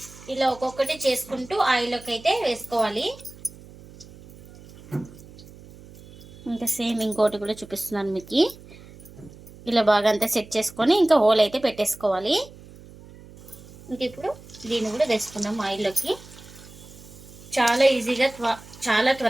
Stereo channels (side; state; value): right; noise; hum, 20 dB below the sound